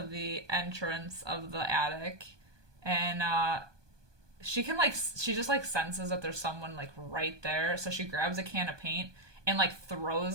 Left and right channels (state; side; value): late; left; 1.2 ms